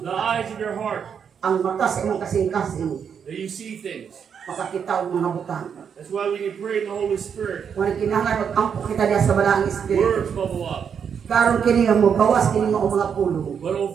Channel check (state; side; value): quieter; left; 7.3 dB